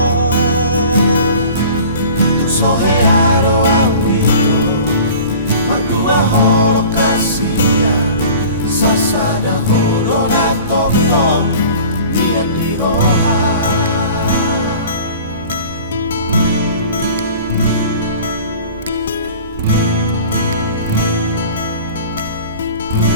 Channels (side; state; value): both; inverted; correlation -0.43